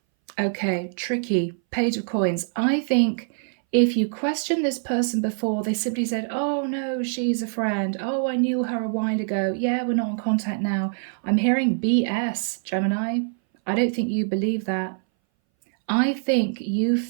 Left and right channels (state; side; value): silent; left; 61 dB below the other